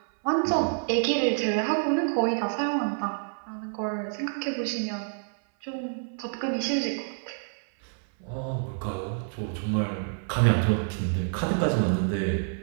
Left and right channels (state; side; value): silent; left; 59 dB below the other